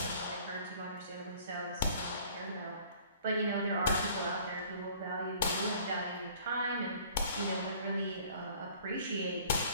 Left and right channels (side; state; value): both; inverted; correlation -0.52